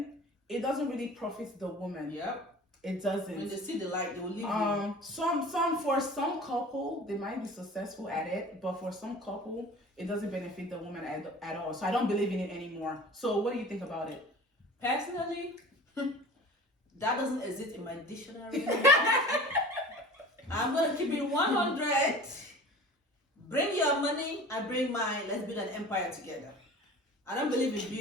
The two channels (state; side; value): normal; both; correlation 0.41